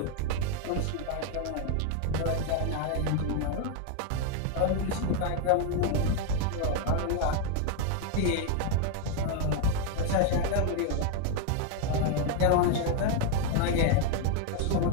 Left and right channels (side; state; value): both; different; correlation 0.01